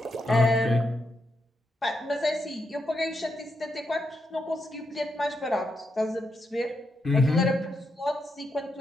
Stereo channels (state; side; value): normal; both; correlation 0.83